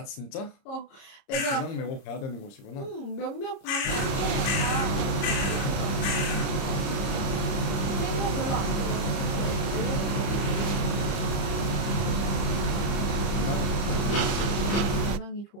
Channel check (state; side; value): late; right; 30 ms